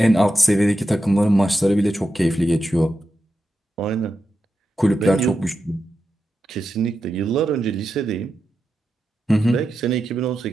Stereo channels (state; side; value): normal; both; correlation 0.89